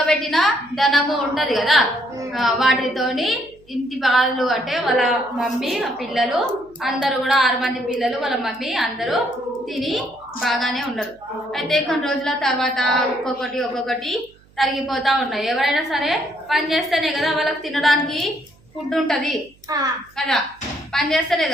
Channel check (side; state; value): right; noise; hum, 29 dB below the sound